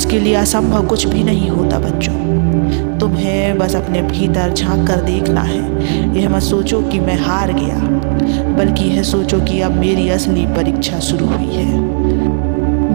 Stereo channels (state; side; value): silent; left; digital silence